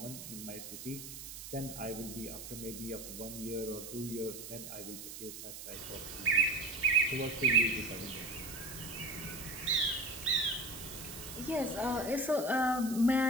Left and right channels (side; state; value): right; noise; hiss, 10 dB below the sound